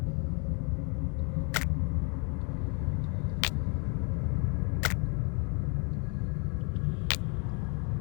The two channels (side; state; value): right; quieter; 35.3 dB